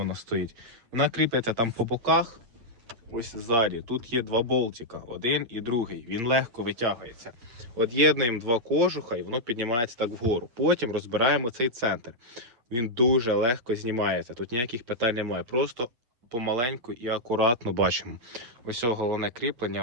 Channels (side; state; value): left; late; 8.7 ms